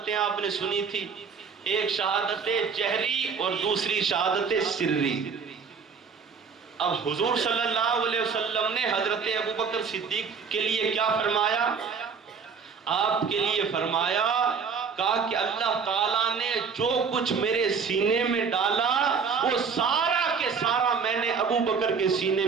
آپ نے سنی تھی، ایک شہادت جہری اور دوسری شہادت سری۔ اب حضور صلی اللہ علیہ وسلم نے حضرت ابوبکر صدیق کے لیے کیا فرمایا؟ آپ کے لیے فرمایا، کہا کہ اللہ تعالیٰ نے جو کچھ میرے سینے میں ڈالا وہ سارا کے سارا میں نے ابوبکر کے سینے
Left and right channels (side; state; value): left; quieter; 5.9 dB